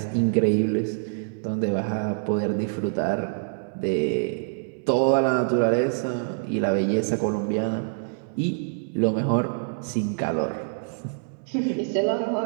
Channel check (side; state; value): left; silent; 61 dB below the other